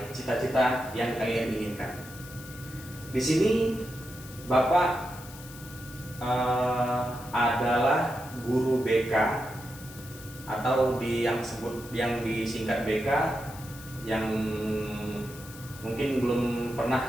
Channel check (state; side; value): noise; left; hiss, 17 dB below the sound